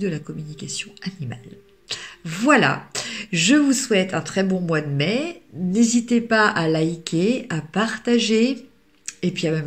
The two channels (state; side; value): identical; both; correlation 1.00